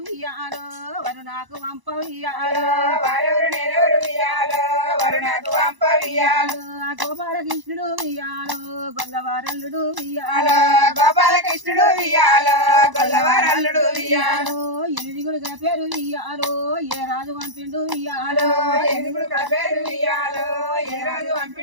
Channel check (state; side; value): late; left; 1.0 ms